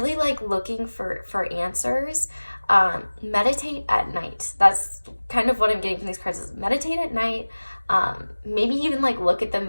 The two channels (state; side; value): inverted; both; correlation -1.00